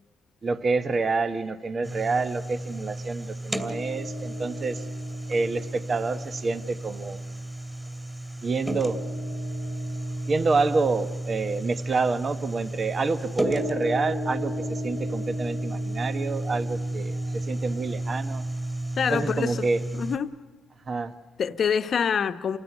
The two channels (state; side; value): normal; both; correlation 0.88